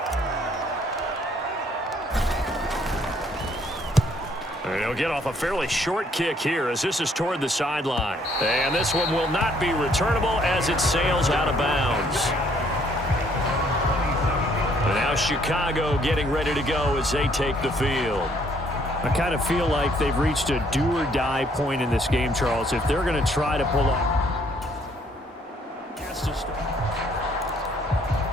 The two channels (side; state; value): both; normal; correlation 0.65